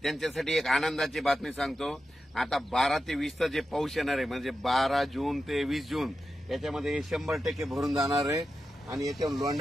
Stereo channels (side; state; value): both; normal; correlation 0.90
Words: त्यांच्यासाठी एक आनंदाची बातमी सांगतो. आता 12 ते 20 जे पाऊस येणार आहे म्हणजे 12 जून ते 20 जून याच्यामध्ये हे 100% भरून जाणार आहे आणि याच्यावर